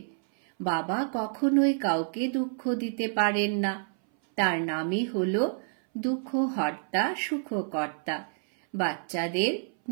বাবা কখনোই কাউকে দুঃখ দিতে পারেন না। তার নামই হলো দুঃখহর্তা সুখকর্তা। বাচ্চাদের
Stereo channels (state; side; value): silent; left; 59 dB below the other